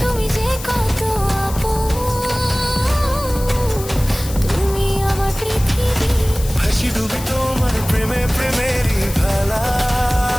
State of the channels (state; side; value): noise; left; hiss, 13 dB below the sound